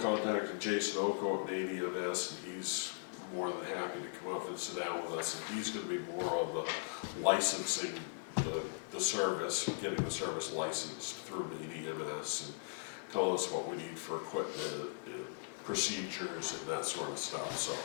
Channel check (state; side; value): silent; right; 52 dB below the other